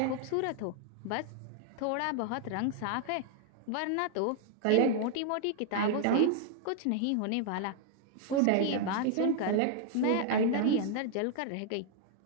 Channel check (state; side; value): different; both; correlation 0.00